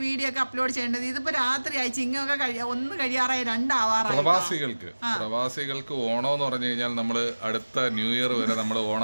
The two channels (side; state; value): both; inverted; correlation -1.00